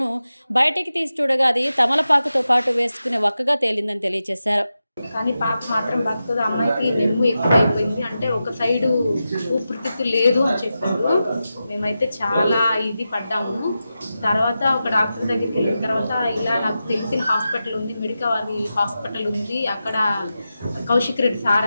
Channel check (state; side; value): inverted; both; correlation -0.91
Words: బయటికి తీసి చూడగా అది తమలపాకుతో పాటు వేసుకునే వక్కగా తేలిందని తెలియజేశారు. కానీ పాప మాత్రం బతుకుతుంది. అమ్మాయికి నెమ్ము ఎక్కువైపోయింది, అంటే ఒక సైడు ఊపిరితిత్తు లేదు అని చెప్పారు. మేమైతే చాలా ఇది పడ్డాము. తర్వాత ఒక డాక్టర్ దగ్గరికి వెళ్ళిన తర్వాత ఇలా నాకు తెలిసిన హాస్పిటల్ ఉంది, మెడికవర్ హాస్పిటల్ ఉంది, అక్కడ కౌశిక్ రెడ్డి